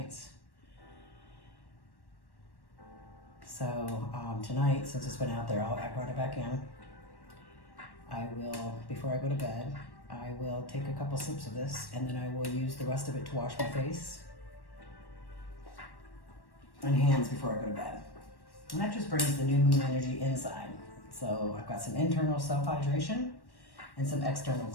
So tonight, since it's been out there, I brought it back in. I will, before I go to bed, I will take a couple sips of this, and then I will use the rest of it to wash my face and hands before I go to bed. And that just brings the new moon energy inside. So I've got some internal self-hydration and some external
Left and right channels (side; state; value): right; late; 1.1 ms